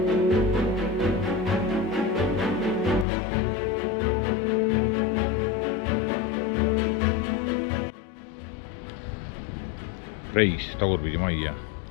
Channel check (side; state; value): right; drops out; at 3.1 s